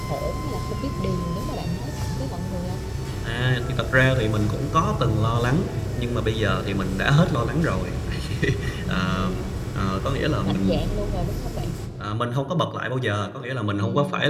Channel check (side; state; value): both; identical; correlation 1.00